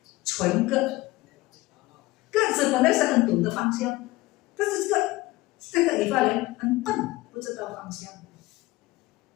纯个子本来是很懂得方向，但是这个以法莲很笨，不知道方向。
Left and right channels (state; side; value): quieter; right; 19.6 dB